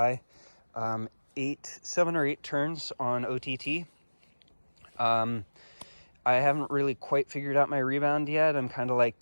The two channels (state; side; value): inverted; both; correlation -1.00